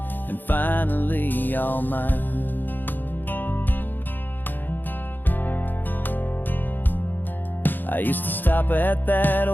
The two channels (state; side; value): late; right; 0.090 ms